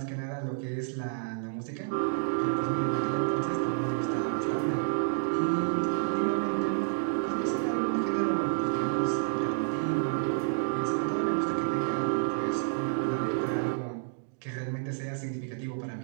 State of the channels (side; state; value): left; silent; digital silence